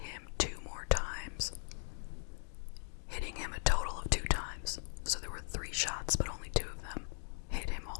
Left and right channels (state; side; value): silent; right; 52 dB below the other